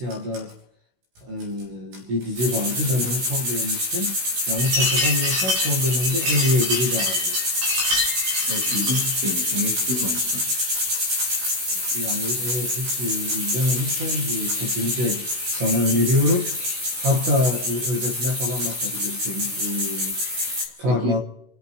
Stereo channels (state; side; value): late; left; 16 ms